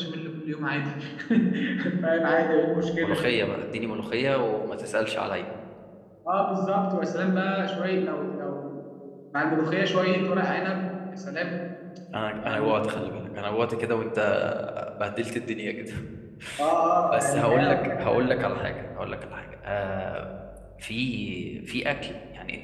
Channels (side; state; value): both; identical; correlation 1.00